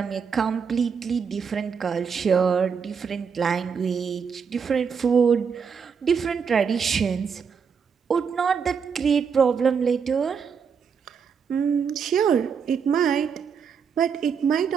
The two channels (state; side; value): quieter; left; 6.4 dB